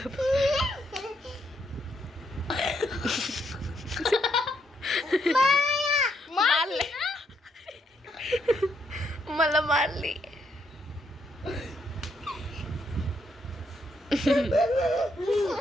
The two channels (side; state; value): both; normal; correlation 0.76